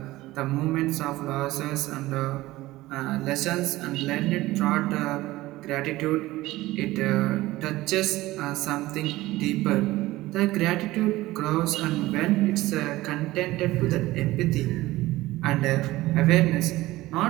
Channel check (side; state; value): left; quieter; 17.8 dB